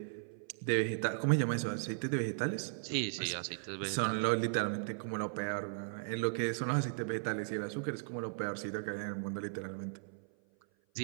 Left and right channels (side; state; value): left; silent; 53 dB below the other